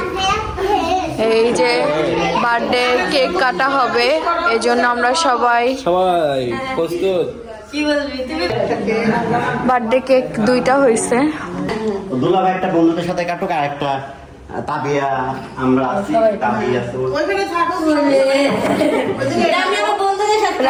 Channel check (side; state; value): both; identical; correlation 1.00